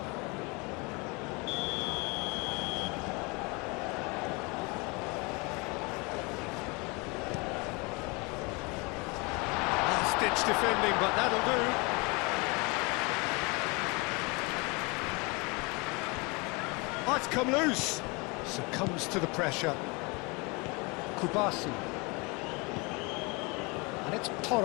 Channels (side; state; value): right; quieter; 28.4 dB